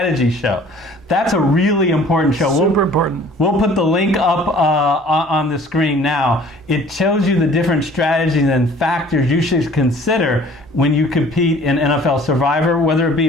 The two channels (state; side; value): normal; both; correlation 0.51